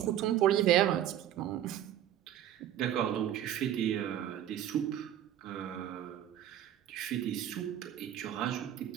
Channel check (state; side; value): quieter; left; 11.4 dB